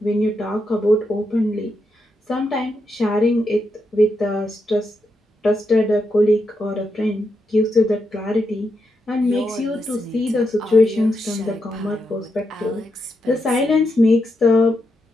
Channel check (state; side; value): normal; both; correlation 0.84